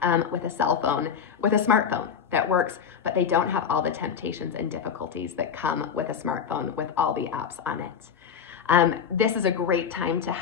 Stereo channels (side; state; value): right; quieter; 7.4 dB